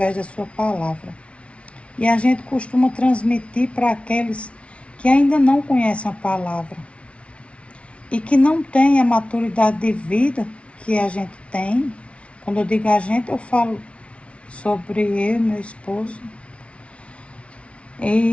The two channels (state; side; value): late; right; 0.061 ms